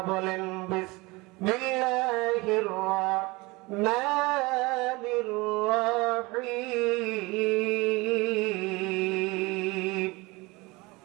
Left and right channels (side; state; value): left; quieter; 23.8 dB